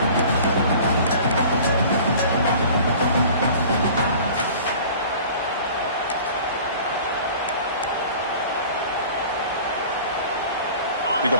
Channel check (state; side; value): inverted; both; correlation -0.44